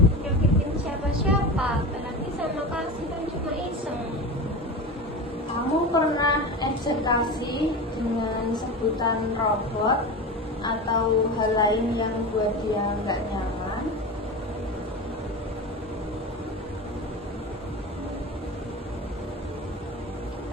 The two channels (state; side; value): normal; both; correlation 0.28